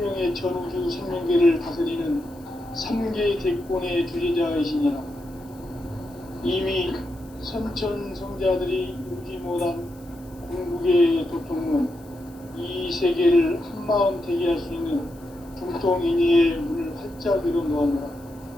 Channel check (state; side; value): noise; left; hiss, 27 dB below the sound